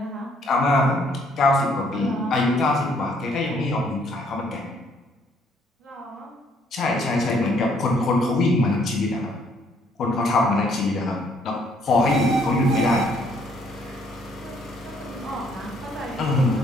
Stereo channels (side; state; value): both; normal; correlation 0.66